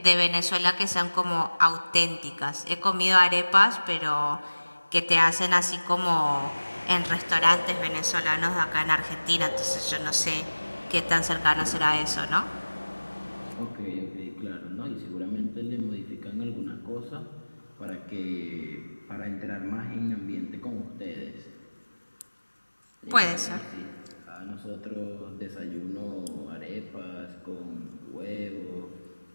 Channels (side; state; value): both; inverted; correlation -1.00